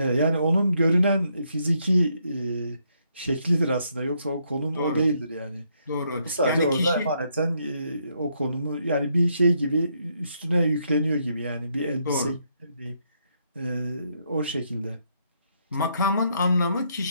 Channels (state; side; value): inverted; both; correlation -0.75